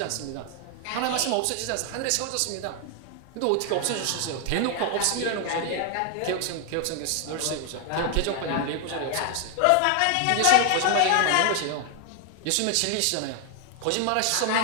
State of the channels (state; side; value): different; both; correlation 0.00